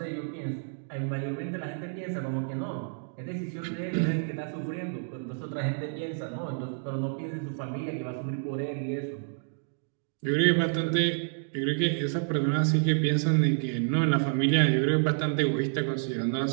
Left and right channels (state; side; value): silent; left; digital silence